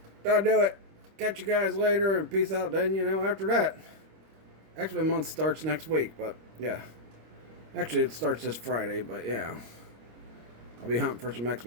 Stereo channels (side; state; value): left; late; 26 ms